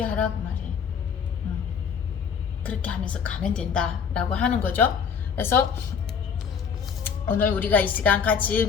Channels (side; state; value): right; quieter; 6.7 dB